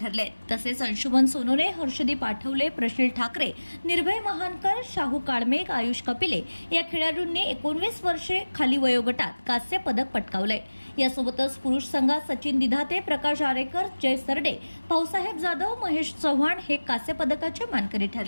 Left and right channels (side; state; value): both; inverted; correlation -1.00